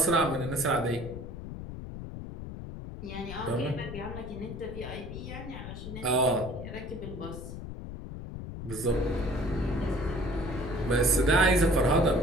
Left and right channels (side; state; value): left; noise; rumble, 9 dB below the sound